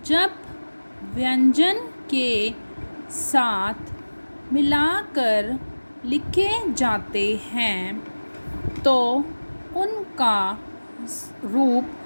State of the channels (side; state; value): both; inverted; correlation -1.00